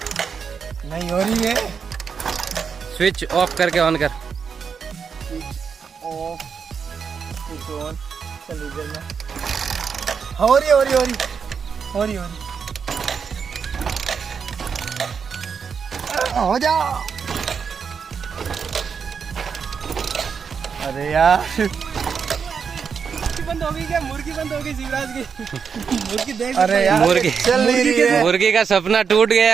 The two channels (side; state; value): left; quieter; 6.3 dB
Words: नहीं हो रही है। स्विच ऑफ करके ऑन कर। Of, switch on. चल इधर में हो रही हो जा। अरे यार बंद हो गई क्या? मुर्गी बंद हो गई शिवराज की। मुर्गी देख, अरे यार मुर्गी चल नहीं रही है। मुर्गी का सपना टूट